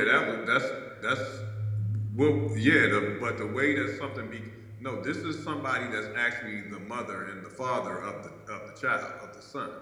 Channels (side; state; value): both; identical; correlation 1.00